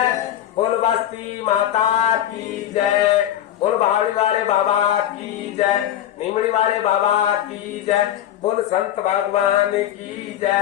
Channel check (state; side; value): quieter; right; 11.6 dB